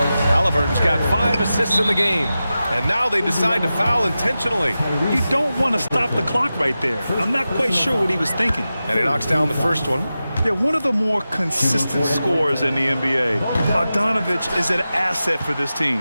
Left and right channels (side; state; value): both; inverted; correlation -0.93